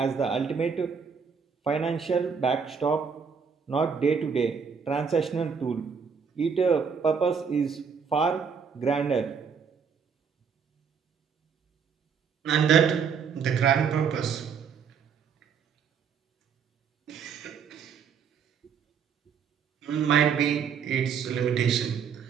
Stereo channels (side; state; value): left; quieter; 6.4 dB